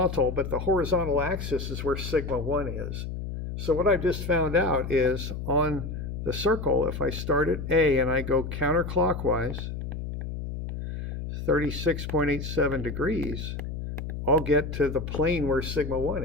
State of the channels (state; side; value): noise; left; hum, 6 dB below the sound